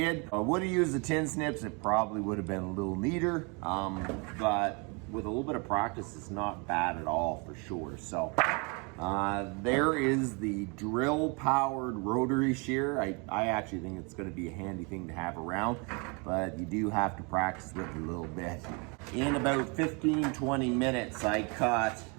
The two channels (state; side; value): quieter; left; 32.1 dB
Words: If I would have used the tin snips, it probably would have been a little neater, but with a little bit of practice, it's not bad at all for sure. So there is the drill powered rotary shear. I actually think it's going to be a handy thing to have around, but you do have to practice with it a little bit. In about 15-20 minutes, I cut